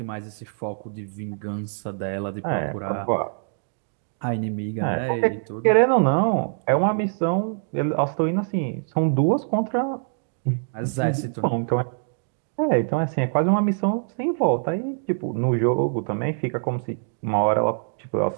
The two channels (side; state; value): left; silent; digital silence